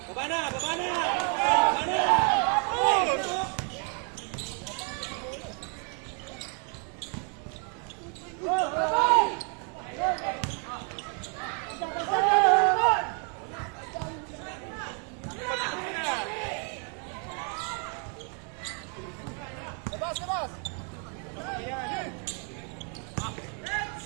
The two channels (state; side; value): quieter; left; 39.0 dB